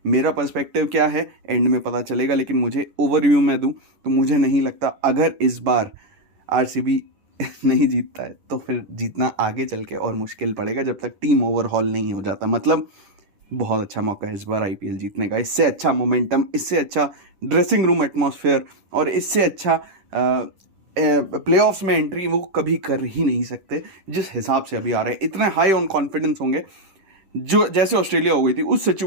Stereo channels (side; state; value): left; late; 10 ms